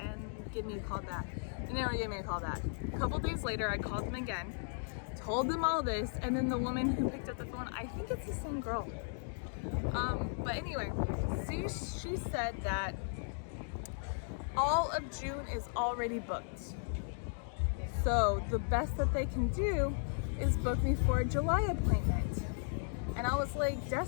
give me a call back. They never gave me a call back. A couple days later, I called them again, told them all this, and then the woman who picked up the phone, I think it's the same girl. But anyway, she said that all of June is already booked. So the best that they can do is book me for a July appointment. And I was like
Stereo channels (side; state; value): right; silent; digital silence